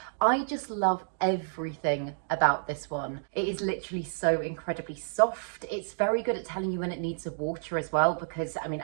I just love everything about this one. It is literally so incredibly soft. It's very good at telling you when it needs a water as well, because I mean,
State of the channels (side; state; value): left; silent; digital silence